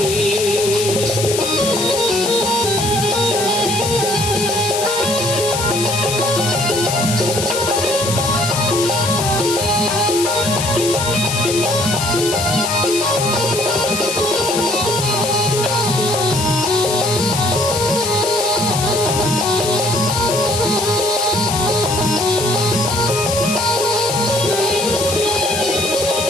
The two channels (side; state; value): left; noise; hiss, 3 dB below the sound